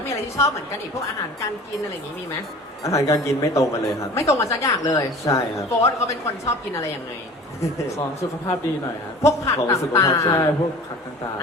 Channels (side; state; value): both; normal; correlation 0.42